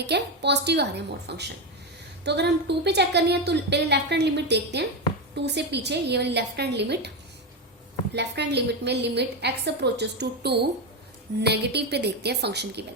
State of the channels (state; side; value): normal; both; correlation 0.12